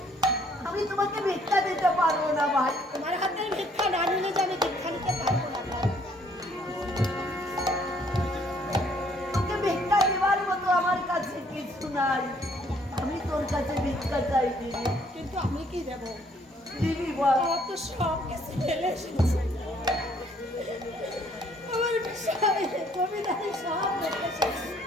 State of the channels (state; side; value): normal; both; correlation 0.63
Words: আমি তোমাকে ভিক্ষা দিতে পারবো না ভাই। তোমার হাতের ভিক্ষা না নিলে যে আমি ভিক্ষা নিতে পারবো না ভাই। তোকে ভিক্ষা দেওয়ার মতো আমার কাছে কিছু নাই। আমি তোর কাছে ভিক্ষা চাই, দিবি? কিন্তু আমি কি দেবো? দিবি বল। আমার তো সব কিছু ফেলে এসেছি, আমার বিষয় জমিদারি সব রেখে এসেছি,